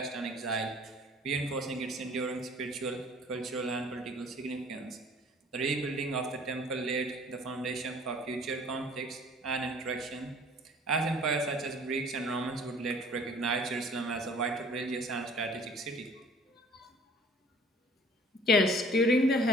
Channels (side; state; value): both; normal; correlation 0.52